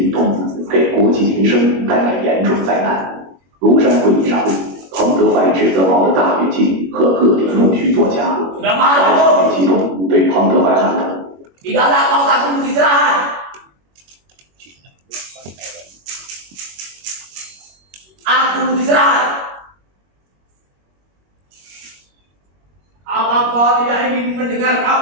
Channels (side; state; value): left; late; 21 ms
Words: 动，给国计民生带来严重灾难。庐山会议上，彭德怀指责毛的大跃进和各地弄虚作假，毛情绪激动，对彭德怀喊道 ：“Tidak ada kau tak perlu istirahat. Aku istirahat. Apa kau tidak ingin mendengar